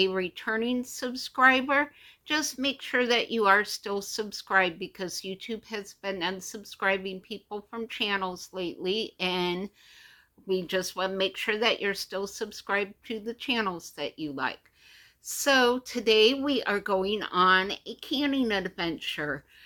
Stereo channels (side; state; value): both; identical; correlation 1.00